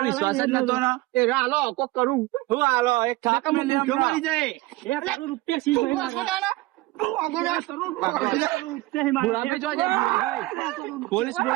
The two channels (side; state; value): left; quieter; 19.5 dB